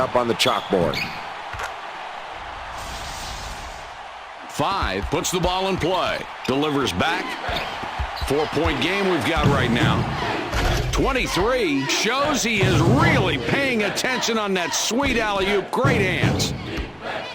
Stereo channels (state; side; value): identical; both; correlation 1.00